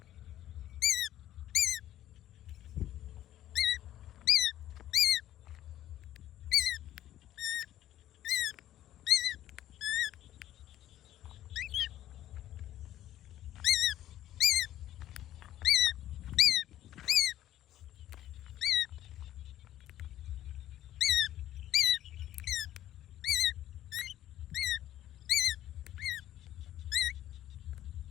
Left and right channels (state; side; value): quieter; right; 12.8 dB